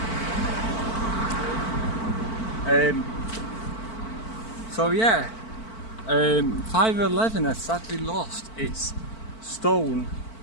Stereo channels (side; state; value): right; late; 4.5 ms